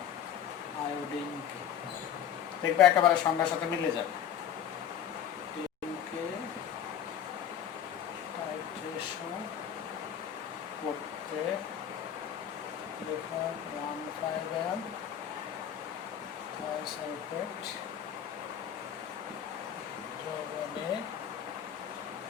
আয়োডিনকে, দেখবে একেবারে সংখ্যার সাথে মিলে যাবে, টাইট্রেশন করতে 1.5 m থায়োসালফেট দ্রবণে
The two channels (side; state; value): right; quieter; 9.4 dB